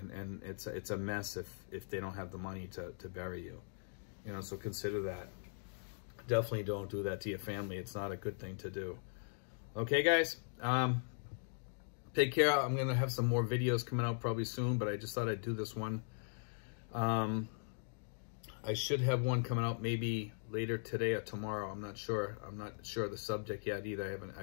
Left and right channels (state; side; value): silent; right; digital silence